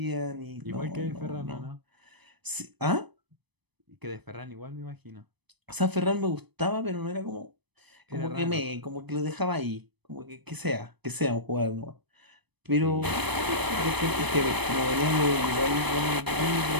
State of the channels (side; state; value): left; late; 0.99 ms